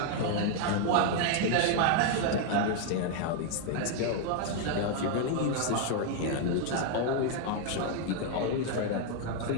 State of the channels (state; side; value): different; both; correlation 0.00